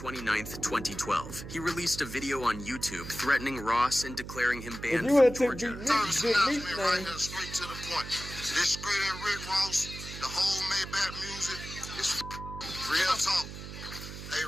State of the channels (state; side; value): noise; right; hum, 10 dB below the sound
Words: 2012, he released a video on YouTube threatening Ross and declaring him banned from Georgia. First announcement right here, straight to the point. This straight at Rick Ross, the whole Maybach music is real talk. Hey